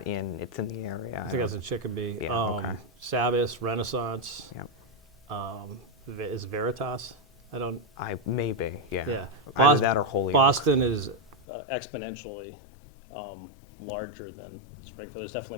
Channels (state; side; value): drops out; right; at 11.4 s